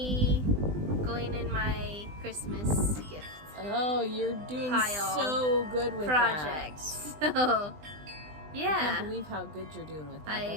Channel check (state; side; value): late; left; 20 ms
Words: going in my Christmas gift Oh, you're doing Pile so good with project. that. So I yeah. can't believe how good you're doing with that. I